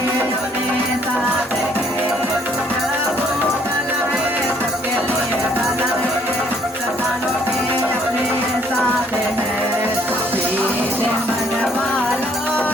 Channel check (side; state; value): both; normal; correlation 0.63